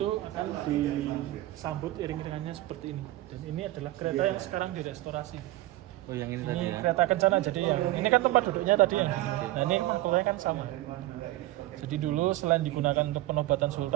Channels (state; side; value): quieter; left; 17.1 dB